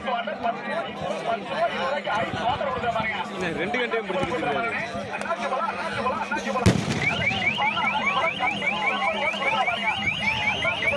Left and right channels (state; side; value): identical; both; correlation 1.00